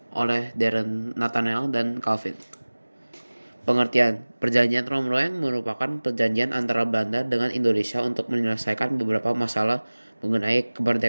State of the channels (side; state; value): both; inverted; correlation -1.00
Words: oleh Darren Nathaniel dan Calvin. Pengertian, perjanjian Rom-Royen merupakan perjanjian antara Belanda dengan Indonesia untuk menyelesaikan beberapa masalah mengenai